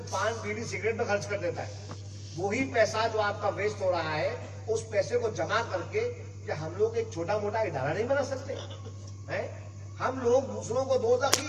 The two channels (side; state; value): both; identical; correlation 1.00